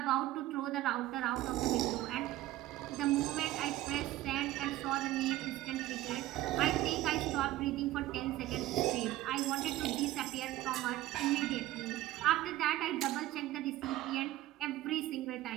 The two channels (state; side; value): quieter; left; 15.5 dB